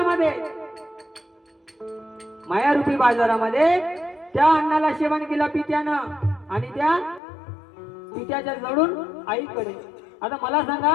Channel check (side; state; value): right; drops out; at 7.2 s